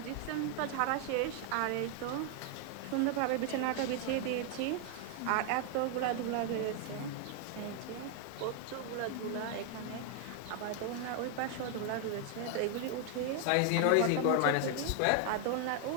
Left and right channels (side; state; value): both; different; correlation 0.00